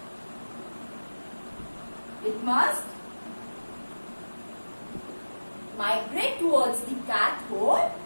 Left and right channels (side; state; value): both; inverted; correlation -1.00